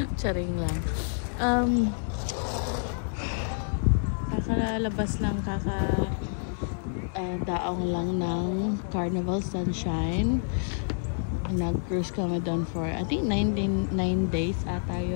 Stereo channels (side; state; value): right; silent; digital silence